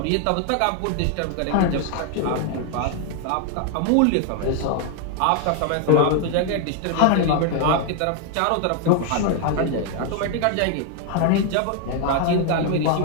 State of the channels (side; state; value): both; different; correlation 0.00